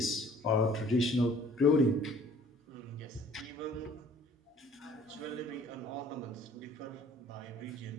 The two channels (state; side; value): normal; both; correlation 0.54